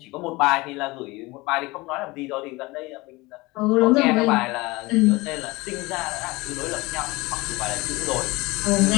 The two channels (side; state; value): right; quieter; 22.4 dB